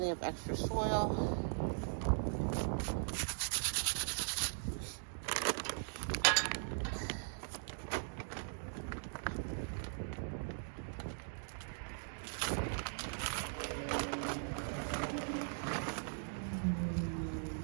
of extra soil.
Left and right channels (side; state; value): left; silent; digital silence